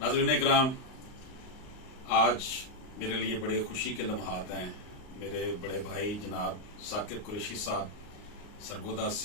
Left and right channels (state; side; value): late; right; 39 ms